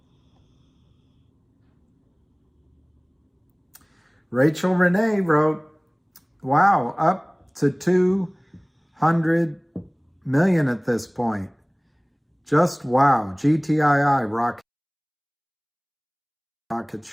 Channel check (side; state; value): both; identical; correlation 1.00